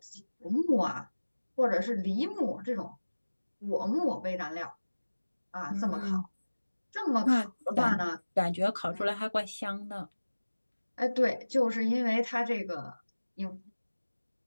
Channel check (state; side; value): inverted; both; correlation -1.00